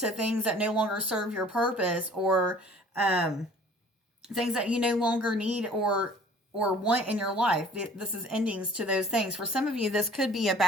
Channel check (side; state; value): both; normal; correlation 0.51